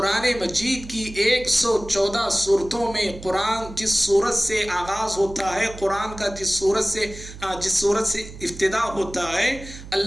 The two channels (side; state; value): right; noise; hum, 14 dB below the sound